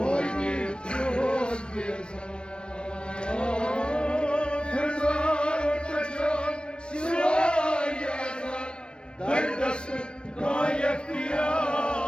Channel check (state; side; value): late; right; 0.055 ms